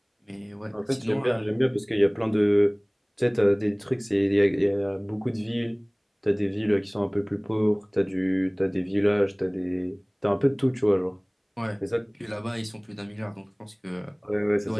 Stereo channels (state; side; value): identical; both; correlation 1.00